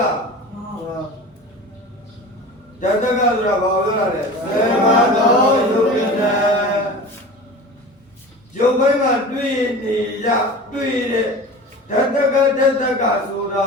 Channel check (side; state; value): both; normal; correlation 0.35